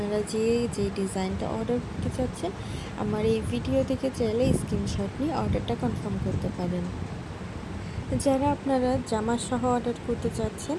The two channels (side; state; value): both; identical; correlation 1.00